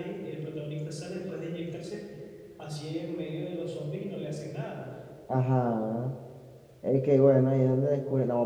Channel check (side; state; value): both; identical; correlation 1.00